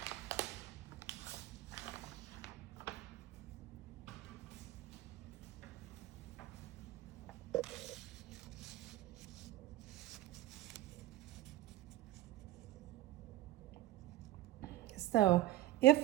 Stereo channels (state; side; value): quieter; left; 15.5 dB